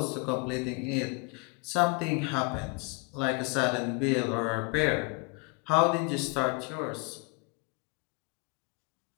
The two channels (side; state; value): right; quieter; 31.8 dB